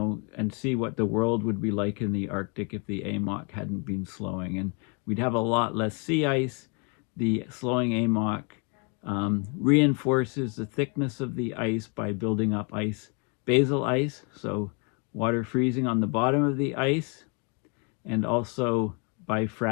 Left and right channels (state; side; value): quieter; right; 33.7 dB